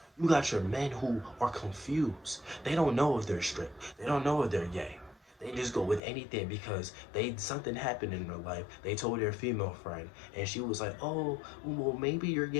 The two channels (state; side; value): drops out; right; at 6.0 s